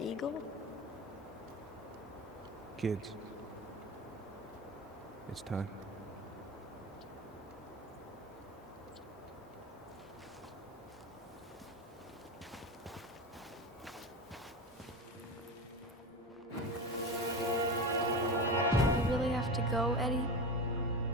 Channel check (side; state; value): both; normal; correlation 0.24